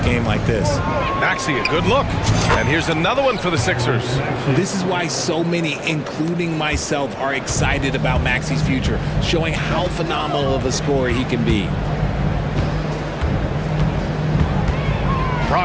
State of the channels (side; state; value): both; identical; correlation 1.00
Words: like this. Maxey, a good look. And here's another one for the Sixers. This is why so many, including myself, are excited about Maxey's future, showing how phenomenal of a scorer he can be.